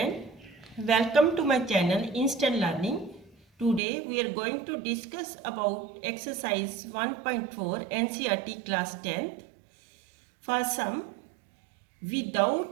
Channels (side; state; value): left; drops out; at 3.8 s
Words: welcome to my channel Instant Learning. Today we are going to discuss about exercise 1.4 NCERT class 10th. For sum,